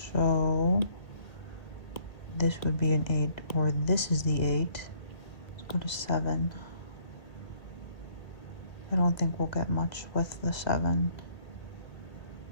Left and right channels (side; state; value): right; late; 1.6 ms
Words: So this would be an 8 or this is the 8. Let's go to 7. I don't think we'll get much with the 7,